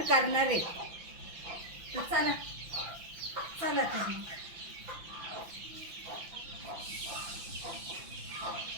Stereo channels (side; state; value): left; late; 5.9 ms